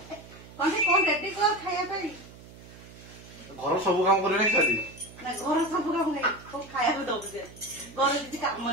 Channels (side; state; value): right; noise; hum, 19 dB below the sound